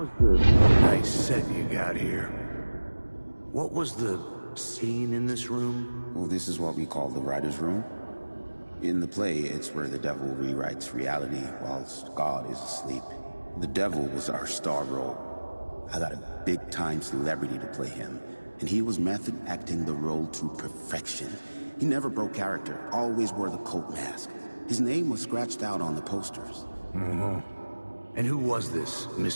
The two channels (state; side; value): inverted; both; correlation -1.00